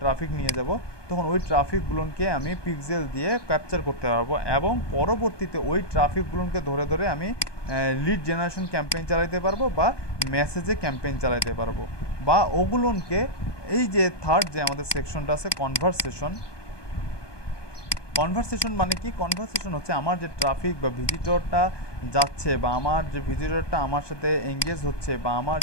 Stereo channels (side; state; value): right; late; 1.2 ms